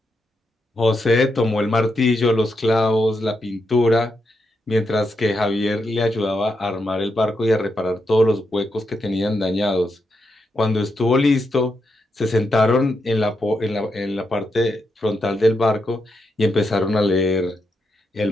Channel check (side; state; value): both; normal; correlation 0.83